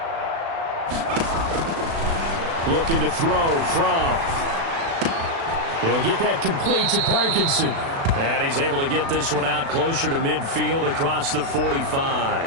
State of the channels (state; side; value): late; left; 36 ms